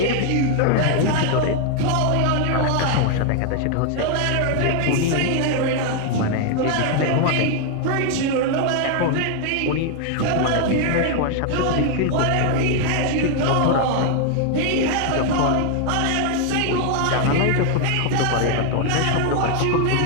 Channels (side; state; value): both; different; correlation 0.00